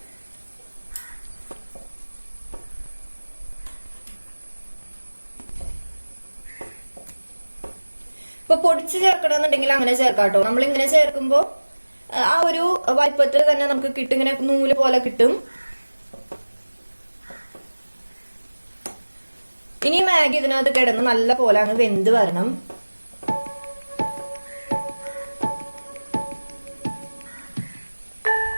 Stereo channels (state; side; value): inverted; both; correlation -1.00